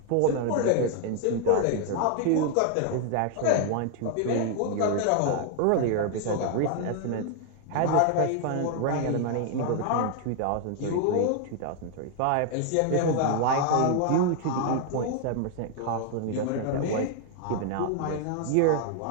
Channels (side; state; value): both; different; correlation 0.00